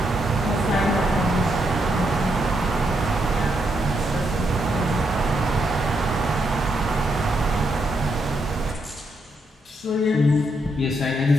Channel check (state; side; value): normal; both; correlation 0.79